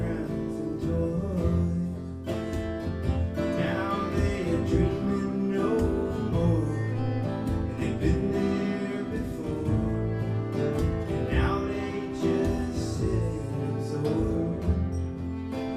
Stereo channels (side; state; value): both; identical; correlation 1.00